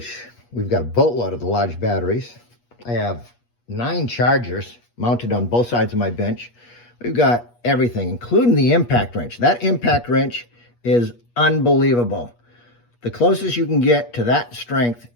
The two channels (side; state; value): right; late; 8.4 ms